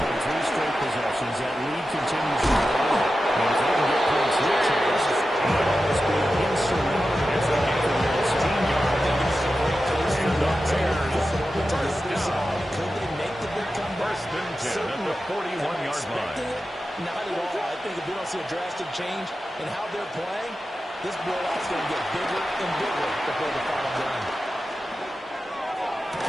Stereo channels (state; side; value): normal; both; correlation 0.92